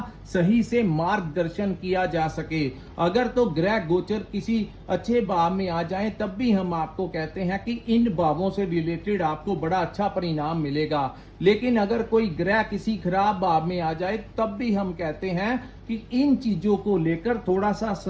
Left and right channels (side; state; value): both; identical; correlation 1.00